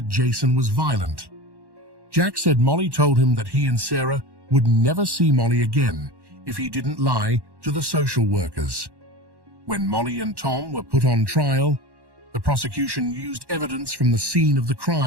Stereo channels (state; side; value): late; left; 1.1 ms